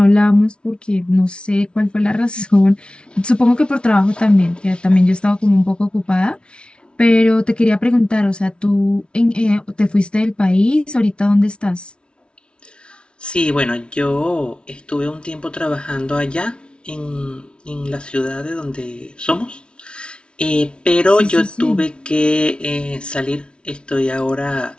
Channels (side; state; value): right; late; 0.057 ms